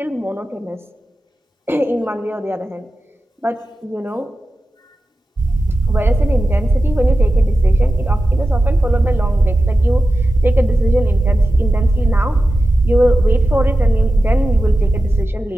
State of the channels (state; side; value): normal; both; correlation 0.93